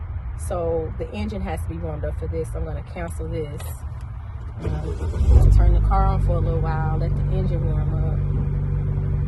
So the engine has to be warmed up for this. I'm going to cancel this. Turn the car on for a little while. Let the engine warm up.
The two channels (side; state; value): both; identical; correlation 1.00